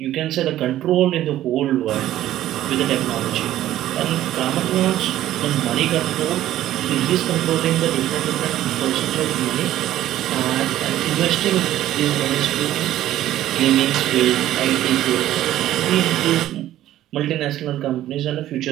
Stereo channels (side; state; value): left; quieter; 13.4 dB